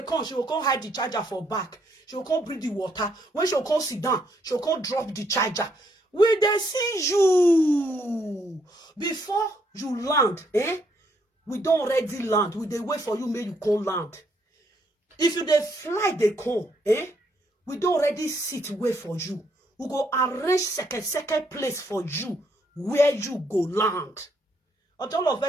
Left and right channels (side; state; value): both; normal; correlation 0.72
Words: come, she will come hide the charger for back. She will come bring the water. When she will come sit down, she will come drop the charger. When they see you before you land, we don't already land. We they wait for you, make you come land. If you they fly, they come, we don't already sit wait for you. We go arrange second place for you where you go land. All of